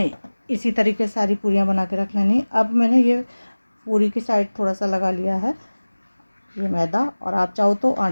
इसी तरीके से सारी पूरियाँ बना के रख लेनी। अब मैंने ये पूरी की साइड थोड़ा सा लगा लिया है ये मैदा, और आप चाहो तो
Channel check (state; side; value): inverted; both; correlation -1.00